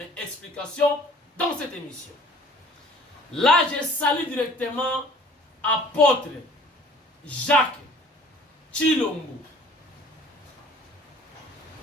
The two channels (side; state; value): both; normal; correlation 0.51